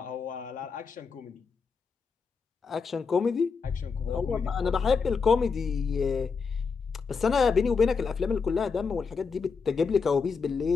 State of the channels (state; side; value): quieter; right; 5.3 dB